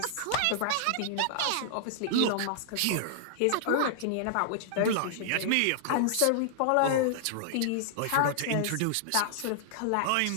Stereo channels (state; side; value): different; both; correlation -0.01